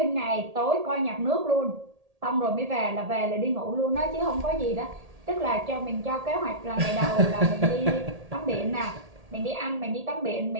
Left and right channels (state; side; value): late; left; 1.8 ms